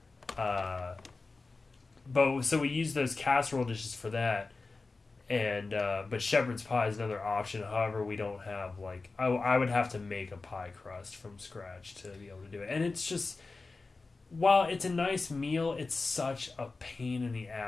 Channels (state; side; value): quieter; right; 3.8 dB